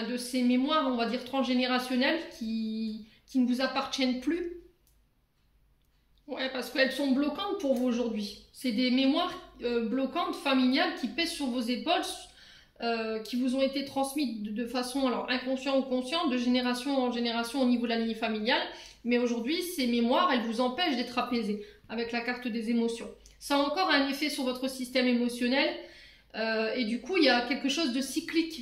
ces mémoires, on va dire, transgénérationnelles qui ne vous appartiennent plus. Ouais, parce qu'elles sont bloquantes pour vous aujourd'hui. C'est des mémoires bloquantes, familiales, qui pèsent sur vos épaules, qui vous ont été transmises de façon alors inconsciente ou consciente, de génération en génération au niveau de la lignée familiale. Mais aujourd'hui, ces mémoires, elles vous empêchent d'être apaisées avec la carte des émotions. Ça a encore un effet sur votre système émotionnel. Et du coup, il y a quelque chose de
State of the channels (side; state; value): both; identical; correlation 1.00